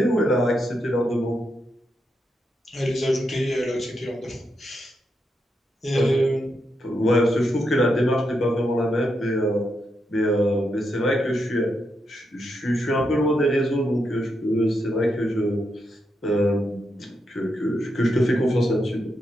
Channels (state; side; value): normal; both; correlation 0.83